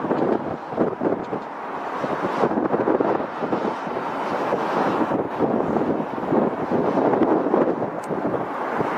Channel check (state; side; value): identical; both; correlation 1.00